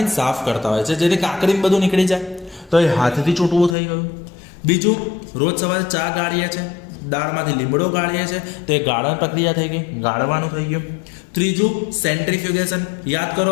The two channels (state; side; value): drops out; right; at 3.8 s